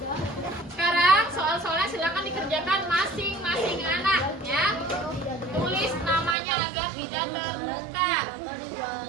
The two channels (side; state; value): left; drops out; at 6.4 s